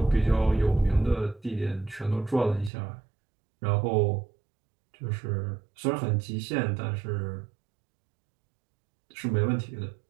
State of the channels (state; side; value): drops out; left; at 2.7 s